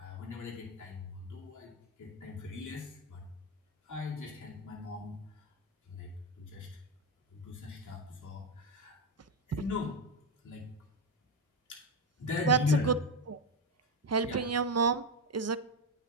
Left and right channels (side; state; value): both; normal; correlation 0.11